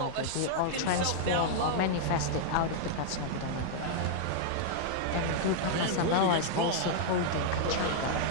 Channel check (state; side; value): different; both; correlation -0.01